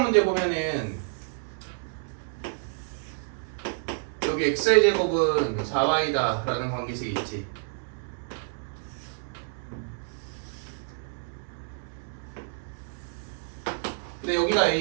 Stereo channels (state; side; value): silent; left; 59 dB below the other